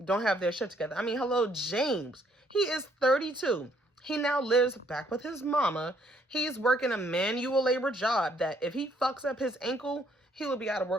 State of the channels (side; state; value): both; normal; correlation 0.67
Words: Don't have their shit together. I mean, hello, James. He is 32. He now lives back with his mama. He's working a manual labor job that if he fucks up his ankle, he will be out of